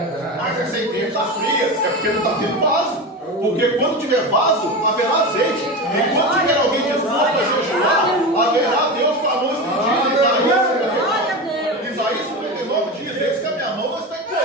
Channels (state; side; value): normal; both; correlation 0.23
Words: Mas essa ideia está fria, é porque não está tendo vaso. Porque quando tiver vaso, haverá azeite. E quando tiver alguém disposto a jejuar, haverá Deus com a mão estendida. Isaías 49 diz: eis que a minha mão não está